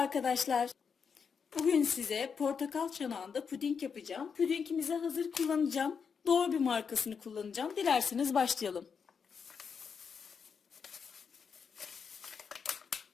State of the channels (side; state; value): right; quieter; 6.2 dB